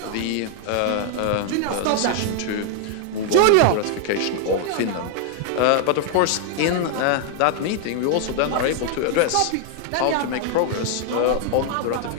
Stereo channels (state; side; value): different; both; correlation 0.00